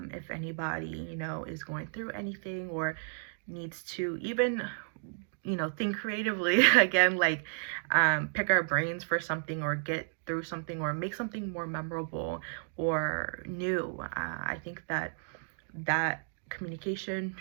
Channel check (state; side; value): silent; left; digital silence